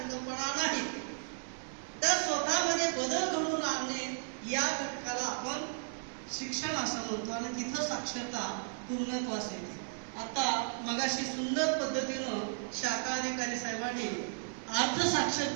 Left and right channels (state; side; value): silent; left; digital silence